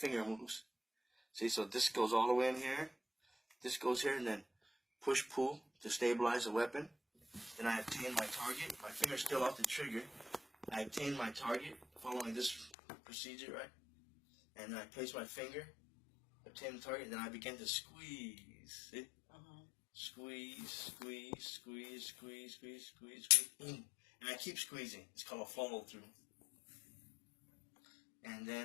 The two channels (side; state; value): right; drops out; at 12.7 s